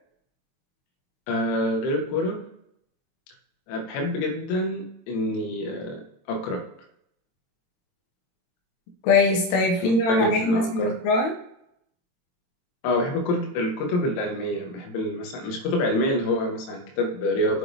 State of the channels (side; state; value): right; late; 22 ms